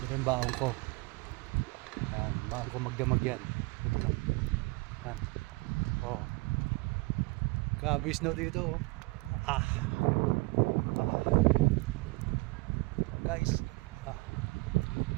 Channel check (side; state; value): left; quieter; 26.4 dB